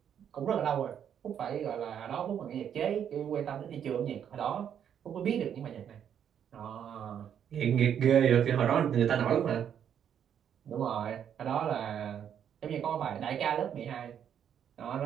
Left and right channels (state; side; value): quieter; left; 8.9 dB